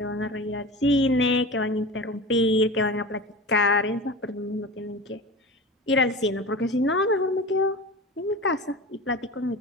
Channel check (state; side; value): normal; both; correlation 0.32